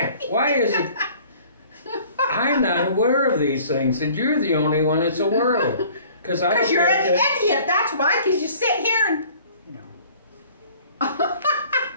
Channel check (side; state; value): both; inverted; correlation -0.51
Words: is it? I'm not aware of these things, and you're the only one that's aware of them. Because you're an idiot. That's why. Because you sit here and